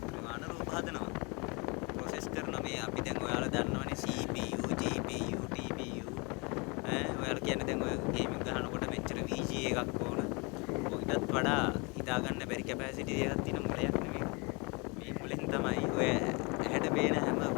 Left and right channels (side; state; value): right; quieter; 29.7 dB